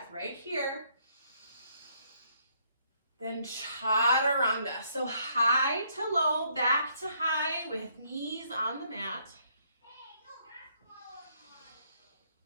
right here. Then chaturanga. So high to low, back to high with knees on the mat.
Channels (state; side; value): inverted; both; correlation -0.69